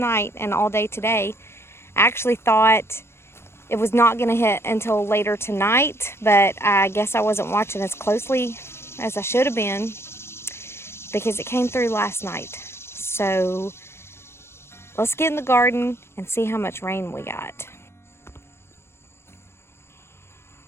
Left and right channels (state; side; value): late; right; 0.12 ms